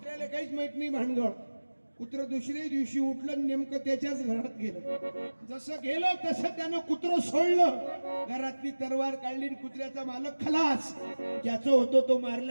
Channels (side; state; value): both; inverted; correlation -1.00